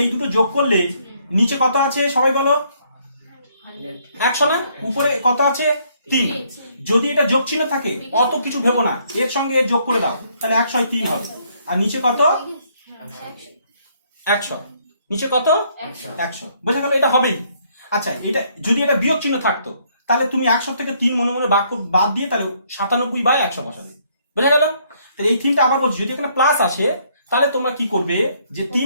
এই দুটো যোগ করলে নিচে কত আছে সবাই বলো? 100 না? উপরে কত আছে? 3। যদি এটা যোগ চিহ্ন থাকে অত কিছু ভেবো না, এর সঙ্গে এর যোগ করে দাও, তাহলে 103 হবে। আর নিচে কত? 100। নিচে কত? 100। বোঝা গেল? এটা হবেই। আচ্ছা, এটা যদি এটা বিয়োগ চিহ্ন থাকতো তাহলে তুমি 100 থেকে 3 মনে মনে বাদ দিয়ে তাহলে 97/100 বসাবে। বোঝা গেল? তাহলে এই 3টা আবার বলছি, যদি এখানে প্লাস আসে তাহলে তোমরা কি করবে, যে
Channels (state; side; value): inverted; both; correlation -0.68